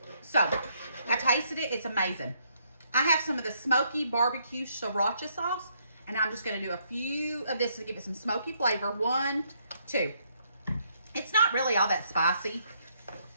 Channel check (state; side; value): inverted; both; correlation -0.72